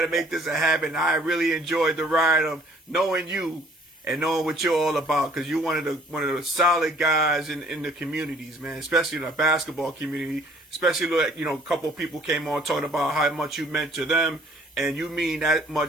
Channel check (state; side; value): normal; both; correlation 0.57